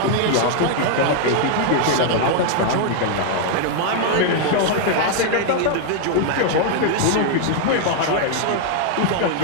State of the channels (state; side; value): different; both; correlation 0.00